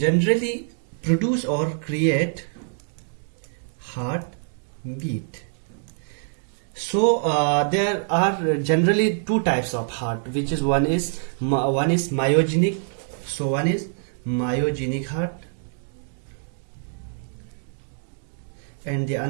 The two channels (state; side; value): silent; left; digital silence